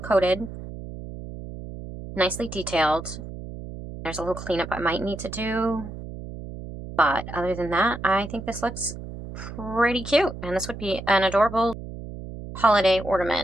coated. Nicely detailed. There's a little cleanup I might need to do. But other than that, I think this looks pretty cute. And this would be an adorable holiday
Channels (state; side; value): noise; right; hum, 11 dB below the sound